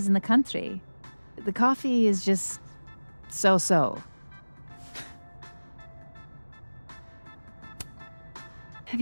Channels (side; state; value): both; inverted; correlation -1.00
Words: in the country. The coffee is just so-so. Have